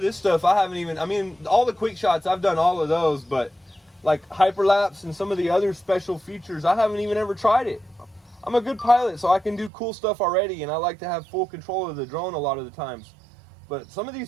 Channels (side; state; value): left; drops out; at 9.7 s